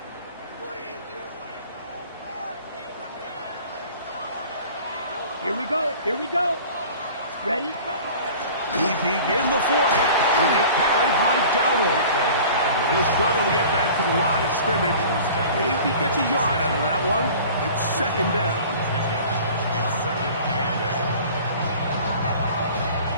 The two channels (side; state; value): both; inverted; correlation -0.44